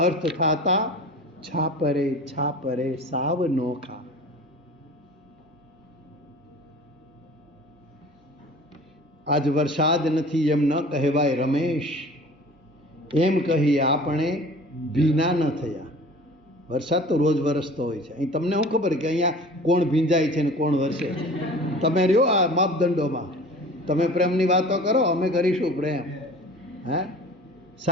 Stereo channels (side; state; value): both; normal; correlation 0.42